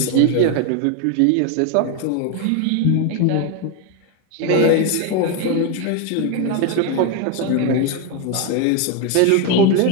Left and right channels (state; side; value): different; both; correlation 0.02